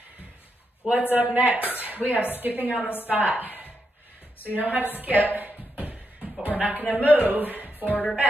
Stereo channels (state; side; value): normal; both; correlation 0.83